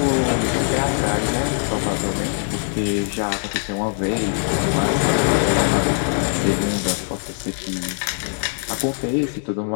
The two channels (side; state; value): right; silent; 65 dB below the other